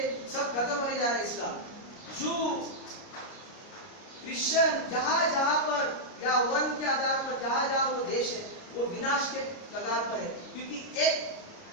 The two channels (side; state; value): right; late; 29 ms